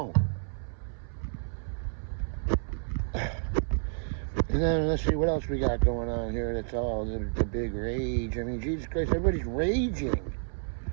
And then let's see what else we got going on here. That's all the big rage. I mean, Jesus Christ, everybody's raging.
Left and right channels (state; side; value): silent; left; 57 dB below the other